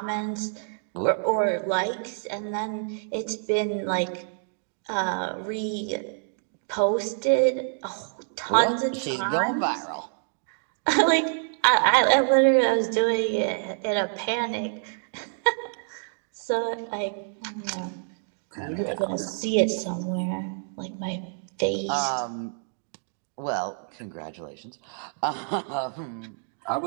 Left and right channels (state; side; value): silent; left; digital silence